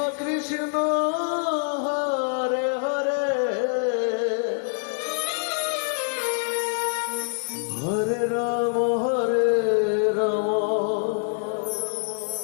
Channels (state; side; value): silent; right; digital silence